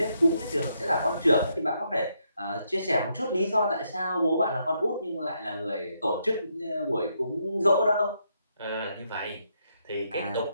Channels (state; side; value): inverted; both; correlation -0.77